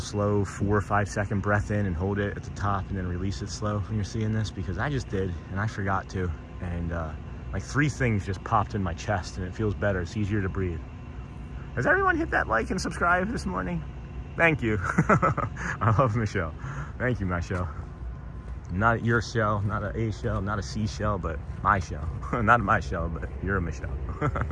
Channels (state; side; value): identical; both; correlation 1.00